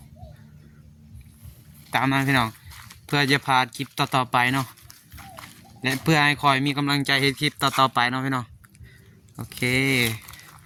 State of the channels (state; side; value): identical; both; correlation 1.00